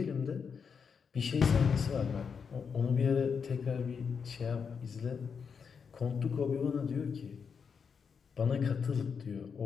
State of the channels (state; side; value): quieter; right; 6.2 dB